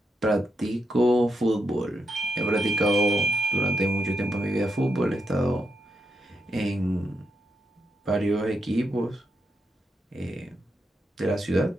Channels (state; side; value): normal; both; correlation 0.81